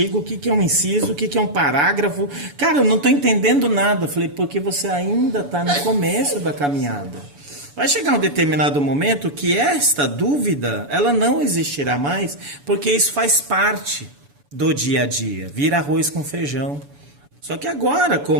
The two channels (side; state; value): left; late; 7.0 ms